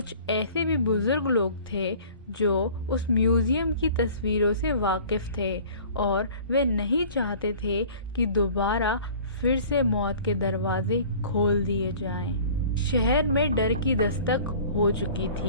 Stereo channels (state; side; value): inverted; both; correlation -0.46